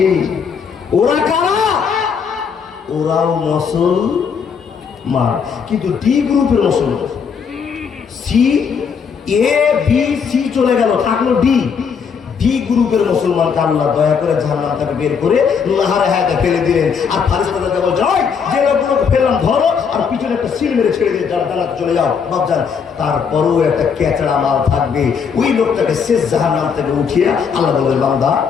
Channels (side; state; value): right; quieter; 6.4 dB